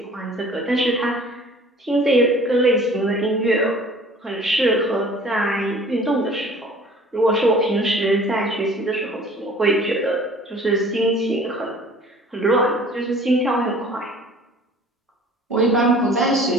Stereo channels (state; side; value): normal; both; correlation 0.49